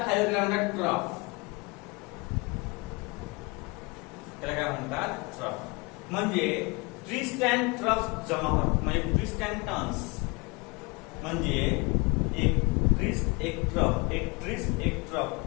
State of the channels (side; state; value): right; quieter; 27.4 dB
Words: खाली म्हणतात ट्रफ. त्याला काय म्हणतात? ट्रफ. म्हणजे ट्विस्ट अँड ट्रफ जमा होत. म्हणजे ट्विस्ट अँड टर्न्स म्हणजे एक ट्विस्ट एक ट्रफ, एक ट्विस्ट एक